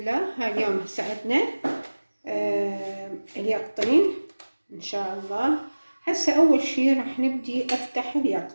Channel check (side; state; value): both; inverted; correlation -1.00